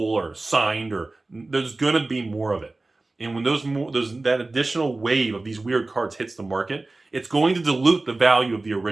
signed, or there's going to be more of it. And when that additional wave of these weird cards hits the market, it's going to dilute the value of the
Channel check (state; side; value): quieter; left; 3.1 dB